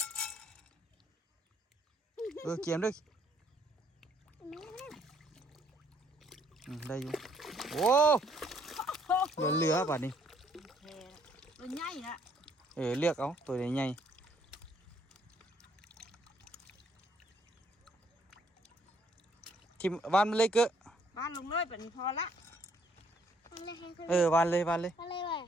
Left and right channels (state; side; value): normal; both; correlation 0.66